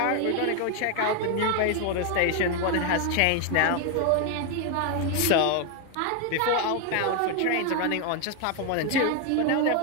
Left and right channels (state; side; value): different; both; correlation 0.01